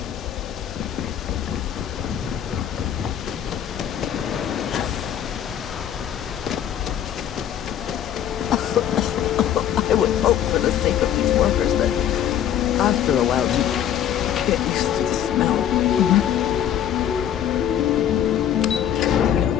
I would hope for the sake of these workers that after a while you get used to the smell.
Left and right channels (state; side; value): quieter; right; 10.1 dB